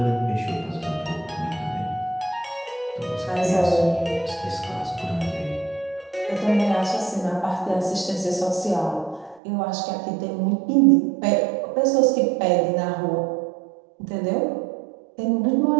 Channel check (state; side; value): drops out; left; at 9.4 s